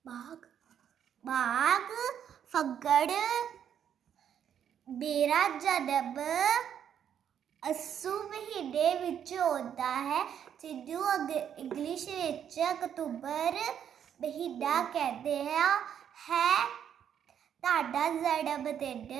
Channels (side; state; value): left; quieter; 9.0 dB